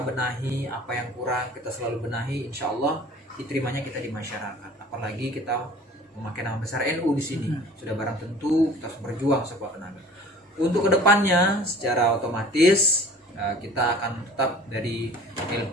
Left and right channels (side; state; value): both; normal; correlation 0.46